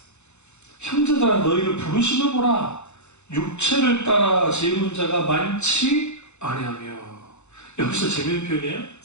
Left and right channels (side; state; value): right; late; 0.82 ms